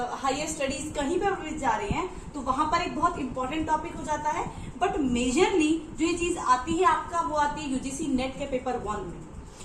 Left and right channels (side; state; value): both; identical; correlation 1.00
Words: हायर स्टडीज कहीं पर जा रहे हैं तो वहां पर एक बहुत इंपॉर्टेंट टॉपिक हो जाता है। बट मेजरली जो ये चीज आती है आपका, वो आती है यूजीसी नेट के पेपर 1 में।